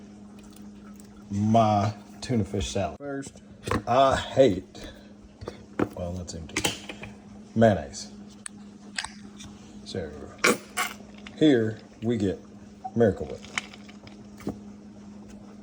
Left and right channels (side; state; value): both; identical; correlation 1.00